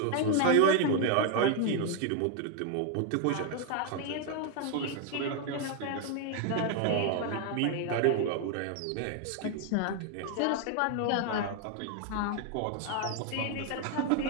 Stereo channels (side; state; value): both; different; correlation 0.01